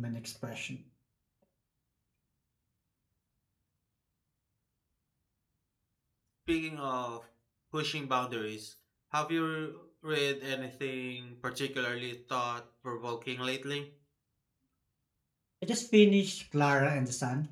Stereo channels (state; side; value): identical; both; correlation 1.00